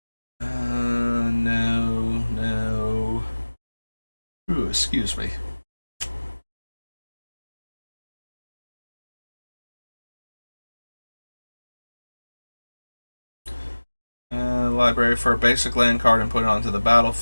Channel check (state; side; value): inverted; both; correlation -1.00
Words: No. Ooh, excuse me. Library for a basic land card and put it onto the